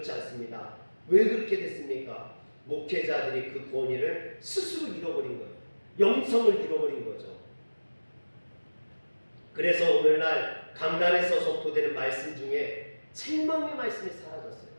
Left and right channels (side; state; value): both; inverted; correlation -1.00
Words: 않습니다. 왜 그렇게 됐습니까? 목회자들이 그 권위를 스스로 잃어버린 거예요. 영성을 잃어버린 거죠. 그래서 오늘날 강단에서 선포되는 말씀 중에 책망의 말씀이 사라졌어요.